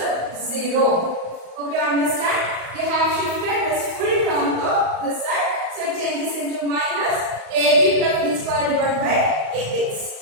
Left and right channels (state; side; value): late; left; 35 ms